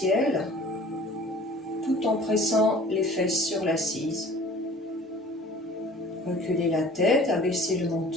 tout en pressant les fesses sur l'assise. Reculez la tête, abaissez le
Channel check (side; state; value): both; normal; correlation 0.48